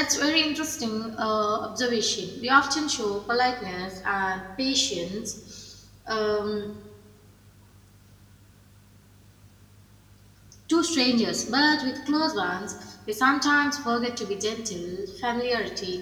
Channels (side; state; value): both; identical; correlation 1.00